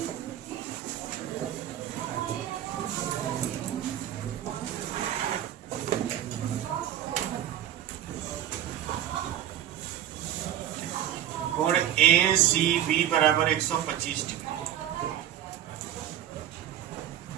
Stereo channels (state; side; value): quieter; left; 11.4 dB